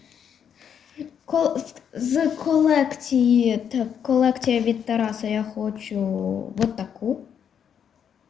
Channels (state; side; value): quieter; right; 8.1 dB